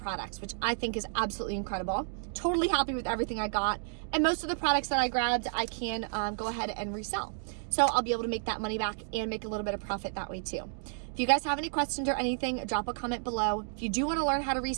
which I think is absolutely incredible. Totally happy with everything I got. And most of the products that I grabbed, I can go ahead and resell. So I'll be able to make that money back and make a little bit of profit that way too. If you guys have any questions or anything, drop a comment below. If you do want to learn how to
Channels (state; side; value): silent; left; digital silence